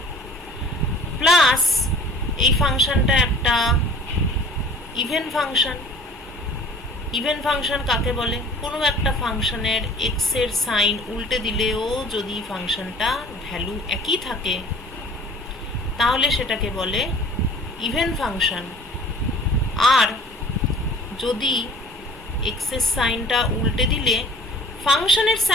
plus এই ফাংশনটা একটা ইভেন ফাংশন। ইভেন ফাংশন কাকে বলে? কোনো একটা ফাংশনের এক্স এর সাইন উল্টে দিলেও যদি ফাংশনটা ভ্যালু একই থাকে তাহলে সেটাকে বলে ইভেন ফাংশন। আর যদি এক্স এর সাইনটা উল্টে দিলে ফাংশনের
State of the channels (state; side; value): normal; both; correlation 0.46